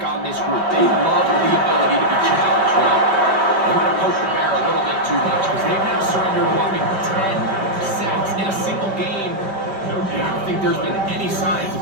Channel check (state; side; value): late; left; 5.1 ms